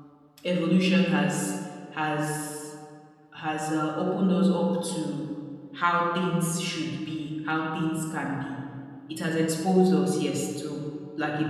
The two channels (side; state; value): both; identical; correlation 1.00